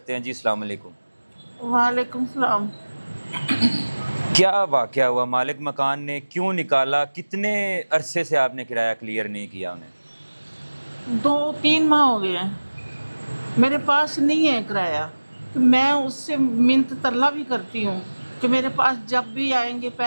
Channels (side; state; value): both; inverted; correlation -1.00